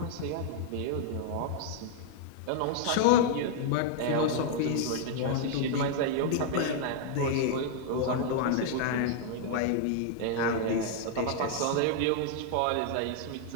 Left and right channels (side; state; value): both; different; correlation 0.00